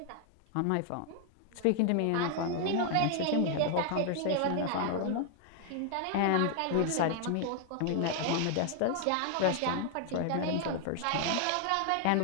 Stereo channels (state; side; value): different; both; correlation 0.00